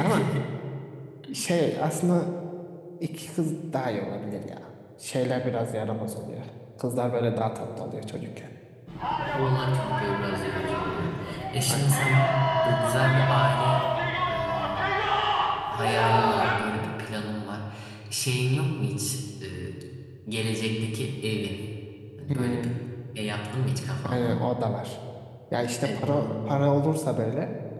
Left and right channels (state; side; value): identical; both; correlation 1.00